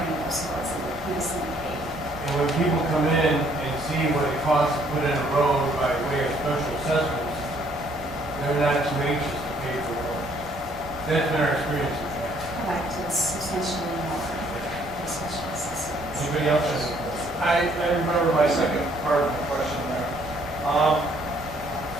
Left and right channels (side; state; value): both; normal; correlation 0.64